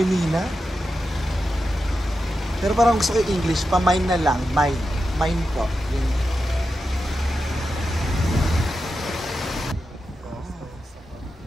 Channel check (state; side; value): normal; both; correlation 0.89